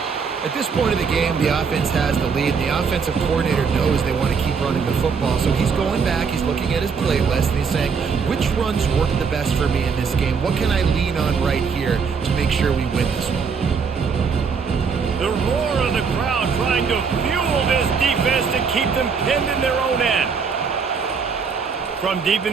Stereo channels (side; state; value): left; quieter; 5.7 dB